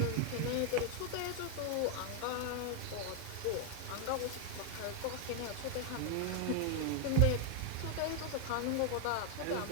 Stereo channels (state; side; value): different; both; correlation 0.00